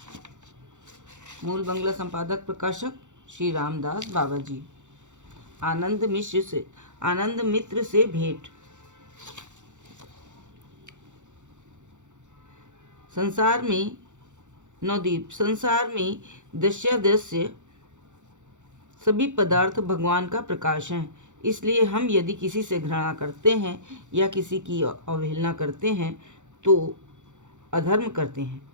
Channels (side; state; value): left; late; 0.85 ms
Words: मूल बंगला संपादक प्रकाशक श्री रामदास बाबा जी। आनंद मित्र से भेंट। संसार में दृश्य सभी पदार्थ भगवान का प्रकाश हैं। इसलिए हम यदि किसी से घृणा करते हैं या किसी की अवहेलना करते हैं तो अधर्म करते हैं।